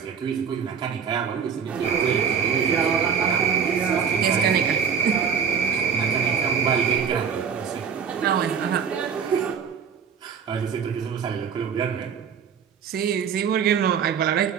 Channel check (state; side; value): quieter; left; 7.1 dB